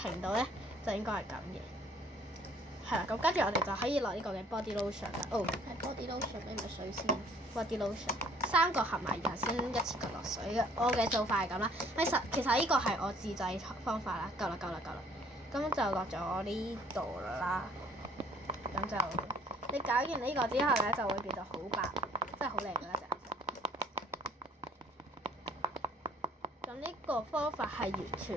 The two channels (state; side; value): normal; both; correlation 0.59